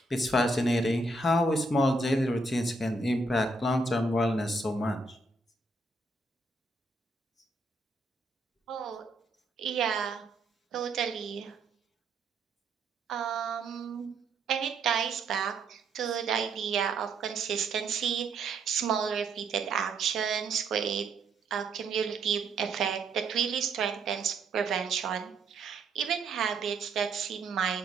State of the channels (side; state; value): left; quieter; 3.1 dB